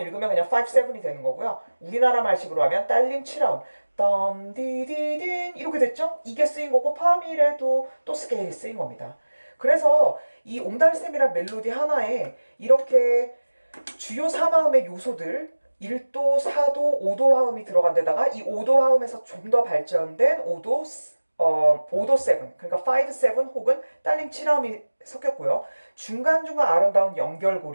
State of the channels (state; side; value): inverted; both; correlation -1.00